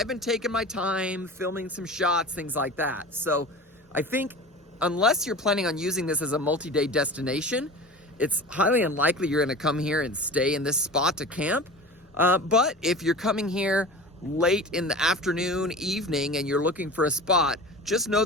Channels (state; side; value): normal; both; correlation 0.35